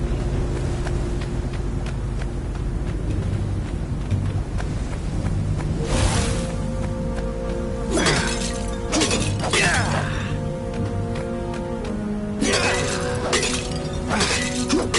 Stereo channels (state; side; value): identical; both; correlation 1.00